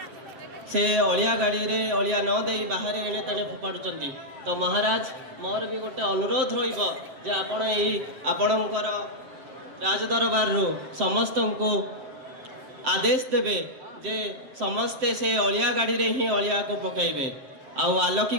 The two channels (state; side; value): late; left; 7.7 ms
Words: से अलिया गाड़ी रे अलिया न दे बाहर एणे तेणे फोपाड़ुचंती। तो महाराज मोर भी गोटे अनुरोध रहिबो जे आपण एही आपणकर राजदरबार रो समस्त को आदेश देवे जे समस्ते से अलिया गाड़ी रे ही अलिया को पकाइबे। आउ